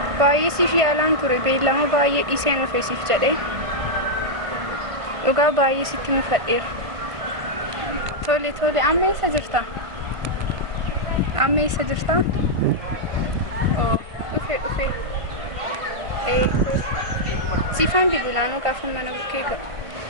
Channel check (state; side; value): late; left; 1.5 ms